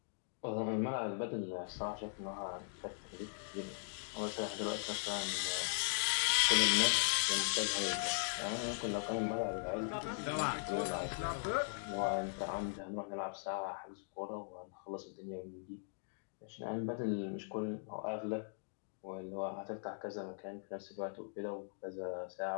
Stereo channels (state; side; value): silent; right; digital silence